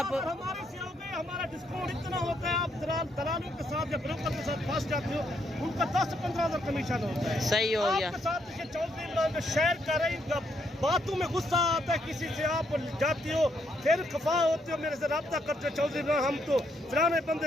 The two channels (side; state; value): both; normal; correlation 0.75